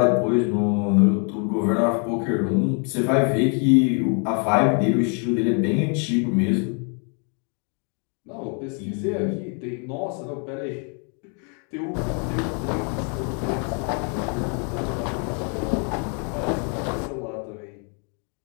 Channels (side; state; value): right; quieter; 39.6 dB